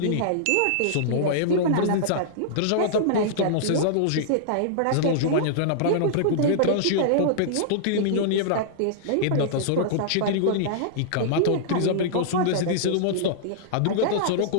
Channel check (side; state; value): both; different; correlation -0.02